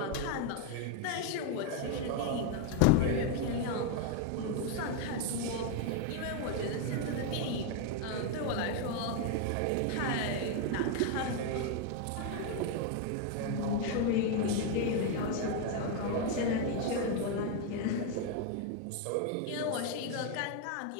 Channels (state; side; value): different; both; correlation 0.01